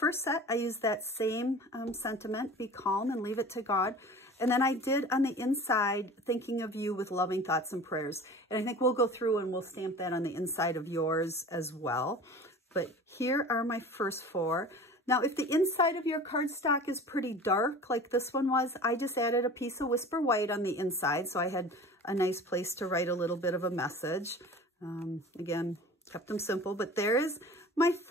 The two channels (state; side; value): normal; both; correlation 0.40